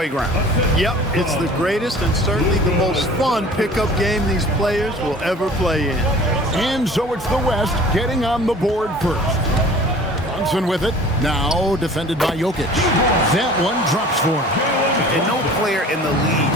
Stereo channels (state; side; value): normal; both; correlation 0.46